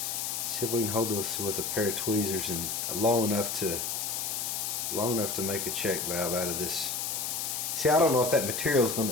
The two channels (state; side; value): noise; left; hiss, 2 dB below the sound